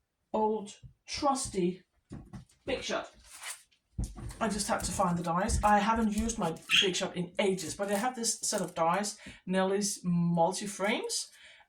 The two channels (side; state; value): both; identical; correlation 1.00